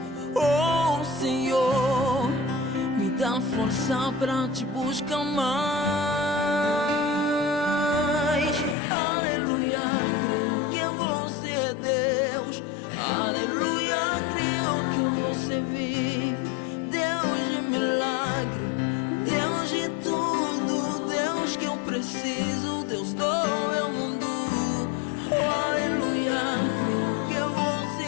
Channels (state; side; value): drops out; right; at 8.8 s